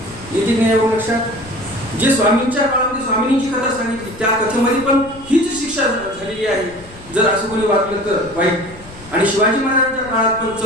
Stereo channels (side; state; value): left; noise; rumble, 20 dB below the sound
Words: येते नाही एवढं लक्षात. जे स्वामींच्या काळामध्ये स्वामींनी जी कथा सांगितली त्या कथेमध्ये पण हीच शिक्षा झालेली आहे, जर असं कोणी वागलं तर वाईट. आणि शिवाजी महाराजांच्या काळात पण